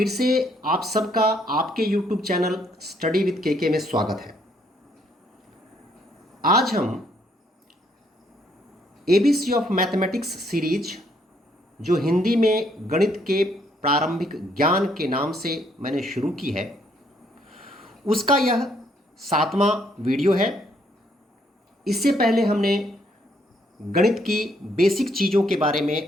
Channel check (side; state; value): both; normal; correlation 0.70